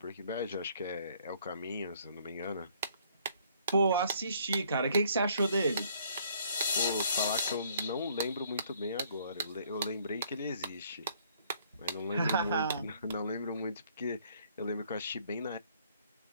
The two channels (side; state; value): both; inverted; correlation -0.62